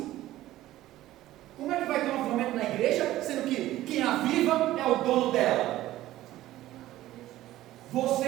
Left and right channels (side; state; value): left; quieter; 15.1 dB